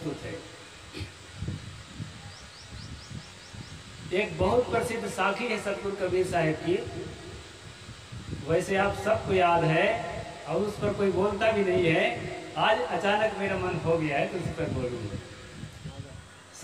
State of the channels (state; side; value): identical; both; correlation 1.00